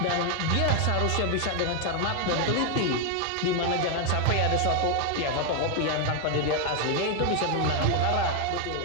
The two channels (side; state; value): both; different; correlation 0.01